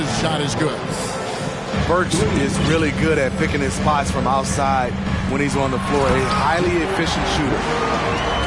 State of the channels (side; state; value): both; identical; correlation 1.00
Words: shot is good. Burks is really good at picking his spots from outside when he's on the floor. A highly efficient shooter.